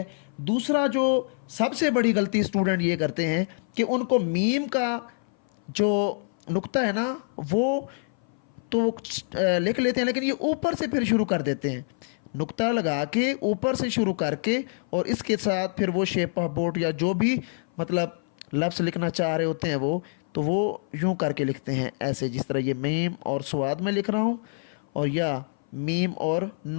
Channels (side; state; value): right; silent; 58 dB below the other